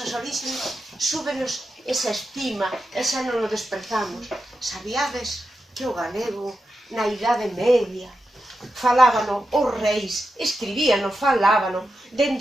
orixes súbenos esa estima, esa non o desprezamos. Sabíades que o galego na Idade Media falábano os reis, escribíano, falábano,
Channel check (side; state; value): both; normal; correlation 0.89